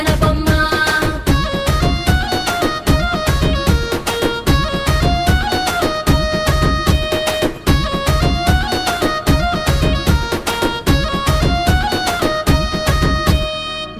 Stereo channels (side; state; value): both; identical; correlation 1.00